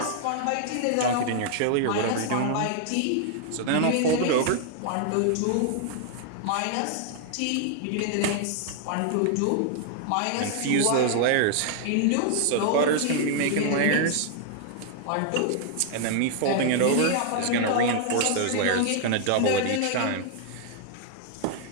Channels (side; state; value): both; different; correlation 0.00